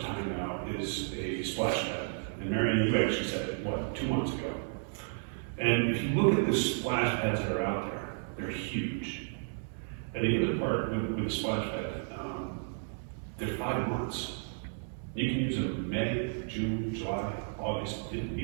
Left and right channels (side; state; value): left; silent; digital silence